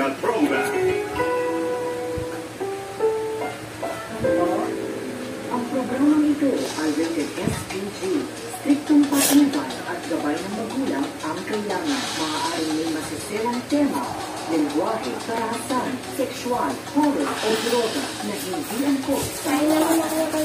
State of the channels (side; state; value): both; identical; correlation 1.00